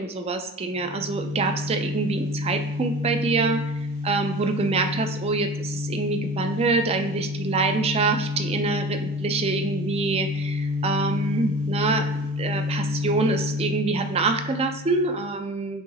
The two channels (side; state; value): both; normal; correlation 0.37